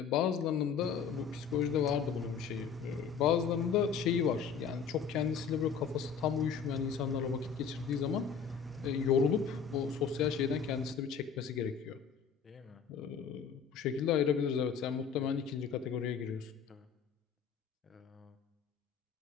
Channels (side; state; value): right; quieter; 6.6 dB